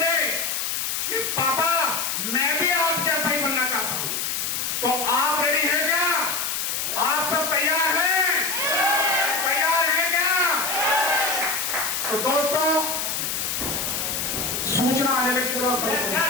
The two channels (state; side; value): noise; left; hiss, 1 dB below the sound